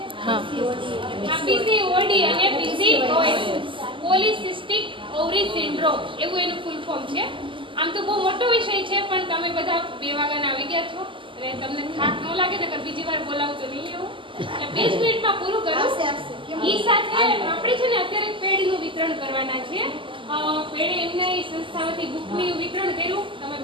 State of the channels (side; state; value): left; late; 0.25 ms